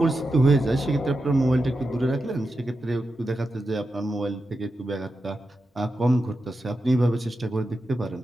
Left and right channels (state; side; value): normal; both; correlation 0.89